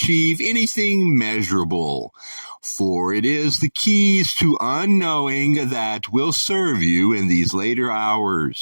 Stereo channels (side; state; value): both; inverted; correlation -1.00